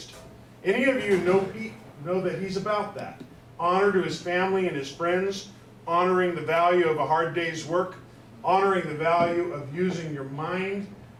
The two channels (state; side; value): identical; both; correlation 1.00